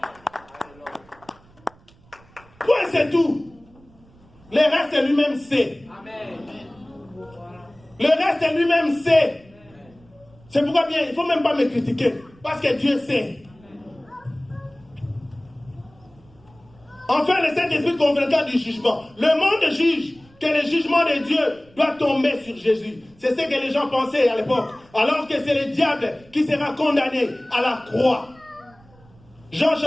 Point, c'est tout. Le reste, lui-même sait. Le reste, lui-même sait. C'est pourquoi bien, il ne faut même pas me critiquer. Parce que Dieu sait. Enfin, le Saint-Esprit convaincra du jugement. Le monde juge que le jugement de Dieu doit tomber sur Jésus. C'est ce que les gens pensaient à l'époque. Alors que c'est le diable qui sera condamné à la croix. Jean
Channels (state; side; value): noise; right; rumble, 28 dB below the sound